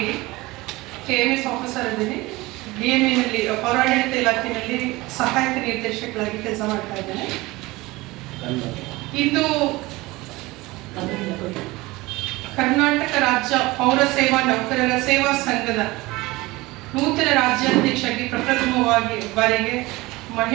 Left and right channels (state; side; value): quieter; left; 20.9 dB